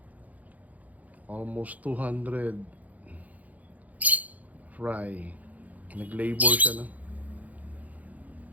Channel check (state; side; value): late; left; 0.077 ms